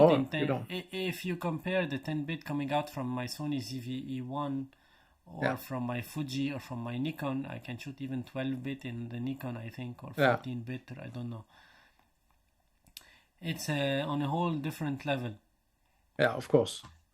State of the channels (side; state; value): both; identical; correlation 1.00